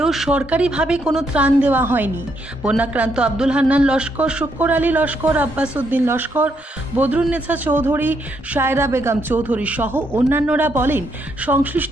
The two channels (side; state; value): both; normal; correlation 0.76